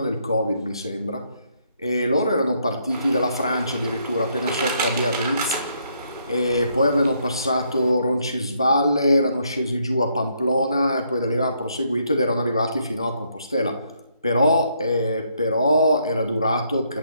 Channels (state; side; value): inverted; both; correlation -0.73